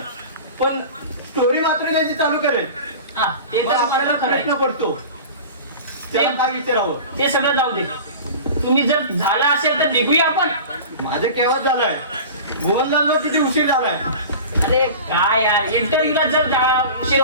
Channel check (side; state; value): both; inverted; correlation -0.36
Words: पण स्टोरी मात्र त्याची चालू करेल. हा ते मग तर आपल्याला आपल्याला प्रश्न करायचं. पडतो त्याला काय विचारावं. ते सगळं जाऊ दे. तुम्ही जर झाला असेल तर निघूया आपण. माझं केव्हा झालंय, मोहनलाल किती उशीर झालाय. अरे काय यार इंटरव्ह्यूला जर उशीर